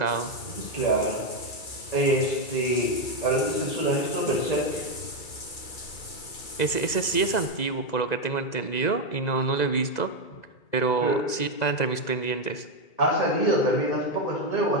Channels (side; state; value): right; late; 2.0 ms